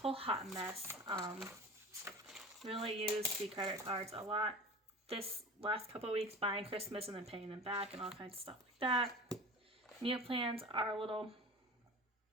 hot mess. Really use the credit cards a lot this last couple of weeks, buying Christmas and then paying them back and all kinds of stuff like that. Meal plans are a little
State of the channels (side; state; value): both; normal; correlation 0.35